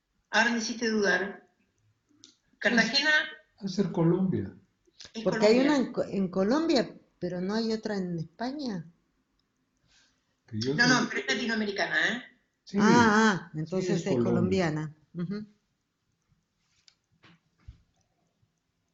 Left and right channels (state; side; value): identical; both; correlation 1.00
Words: ahora me hiciste dudar. Es, Cartagena es ser Colombia. es Porque hay una Colombia. en Colombia, pero no hay otra en España. Que yo No, sé. no, pero es latinoamericana, ¿eh? Sí, sí, es Entonces es Colombia. colombiana. Ujú.